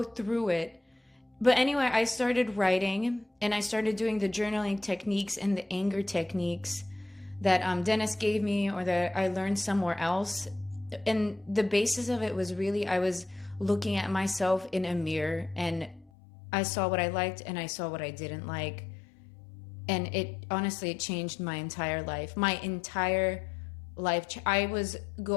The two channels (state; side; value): drops out; right; at 16.1 s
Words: through it. But anyway, I started writing, and I started doing the journaling techniques and the anger techniques that Dennis gave me, or that I learned somewhere else. And the basis of it was really, I was looking at myself in a mirror, and I saw what I liked and I saw what I didn't like. And it changed my entire life. My entire life. I